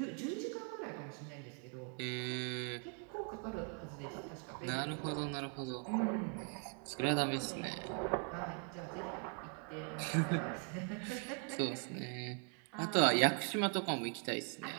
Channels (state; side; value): quieter; left; 39.8 dB